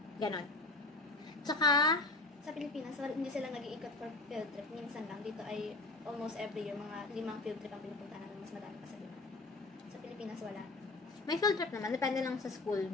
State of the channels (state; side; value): quieter; right; 3.2 dB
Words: Ganun. Tsaka, sa Pilipinas, hindi sila nag-iikot for field trip. Minsan lang. Dito ay almost every year, mga 5 field trip ang pinupunta namin. Mas madami pa sa Pilipinas. Sa Pilipinas, wala. may field trip naman. Depende lang sa school